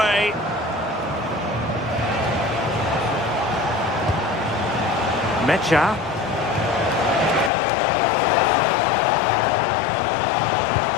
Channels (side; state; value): right; drops out; at 7.5 s